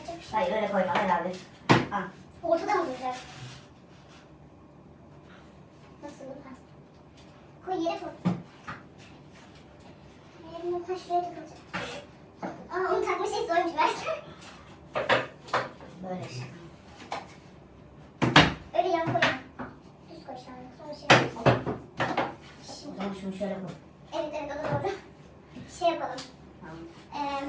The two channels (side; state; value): both; identical; correlation 1.00